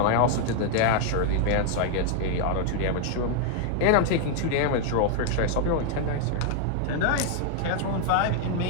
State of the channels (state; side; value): different; both; correlation 0.00